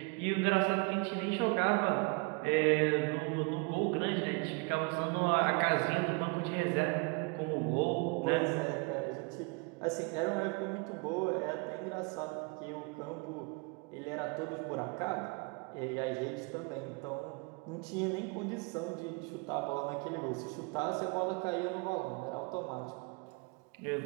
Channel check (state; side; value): quieter; left; 30.8 dB